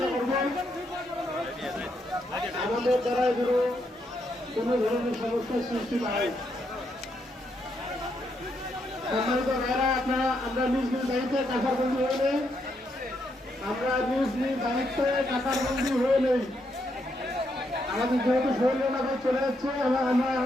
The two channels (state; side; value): normal; both; correlation 0.78